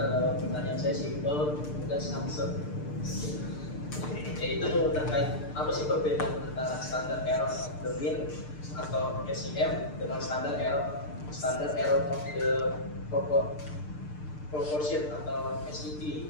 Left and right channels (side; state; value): right; late; 6.7 ms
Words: pertanyaan saya simpel dan samsung. Yaitu terkait apa sih perbedaan antara standar error of the mean atau SEM dengan standar error of the proportion atau SET.